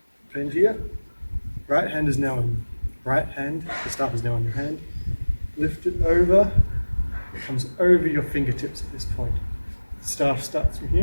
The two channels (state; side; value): inverted; both; correlation -1.00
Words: bend here. Right hand is now in right hand, the staff is now on your hand. Lift it over, it comes over your fingertips at this point. The staff starts from